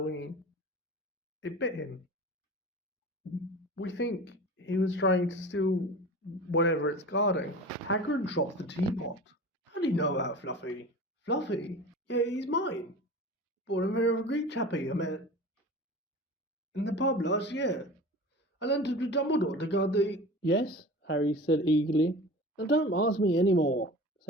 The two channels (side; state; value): both; normal; correlation 0.36